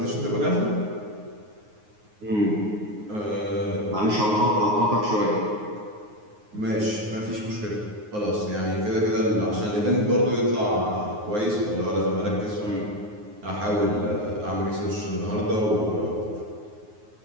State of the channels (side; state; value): left; late; 9.5 ms